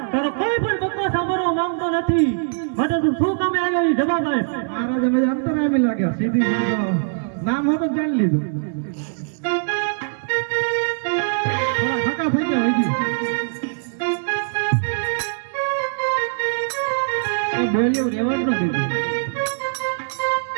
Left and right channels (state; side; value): silent; left; 64 dB below the other